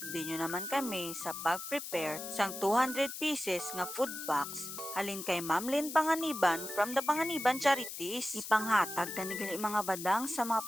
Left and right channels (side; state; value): left; noise; hiss, 8 dB below the sound